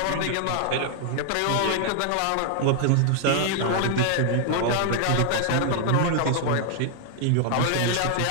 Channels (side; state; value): both; different; correlation 0.00